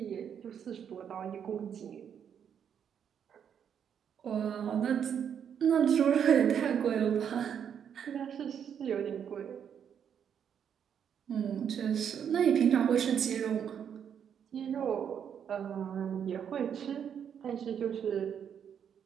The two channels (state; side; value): quieter; left; 8.2 dB